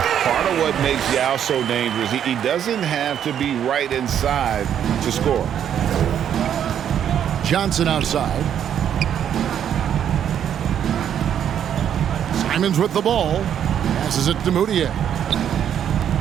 of what makes Yao so dangerous, he doesn't have to be right inside to score. Johnson outside. Simons with the ball. Passes it to Moutier.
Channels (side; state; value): left; quieter; 9.4 dB